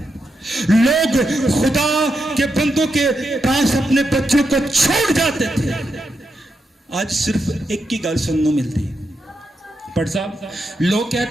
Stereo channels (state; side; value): normal; both; correlation 0.84